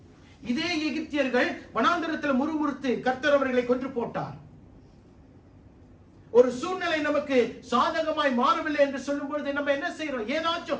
இதே எகிப்தியர்கள் வனாந்தரத்தில் முறுமுறுத்து கர்த்தர் அவர்களை கொன்று போட்டார். ஒரு சூழ்நிலை நமக்கு சாதகமாய் மாறவில்லை என்று சொல்லும் பொழுது நம்ம என்ன செய்யறோம்?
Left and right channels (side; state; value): both; identical; correlation 1.00